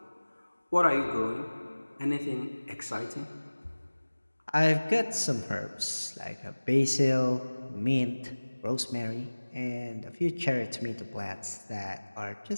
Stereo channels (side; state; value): both; inverted; correlation -1.00